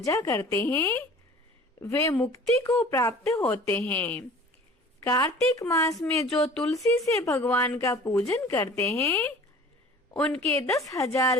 करते हैं, वे मुक्ति को प्राप्त होते हैं। कार्तिक मास में जो तुलसी से भगवान का पूजन करते हैं, उनके 10,000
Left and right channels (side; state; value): both; normal; correlation 0.45